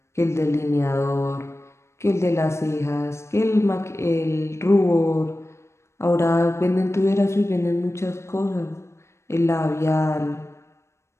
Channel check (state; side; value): late; right; 0.13 ms